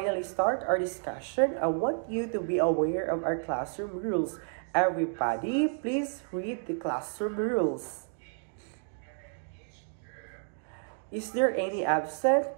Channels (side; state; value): left; silent; 57 dB below the other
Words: start our discussion, I want you to be aware of our classroom rules. Everybody, please read the classroom rules. Is there any